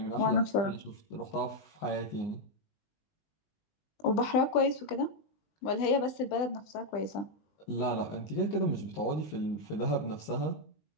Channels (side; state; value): right; late; 19 ms